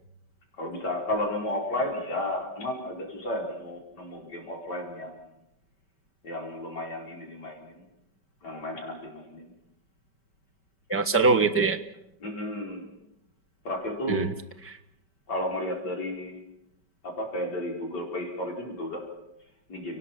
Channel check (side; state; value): right; late; 5.2 ms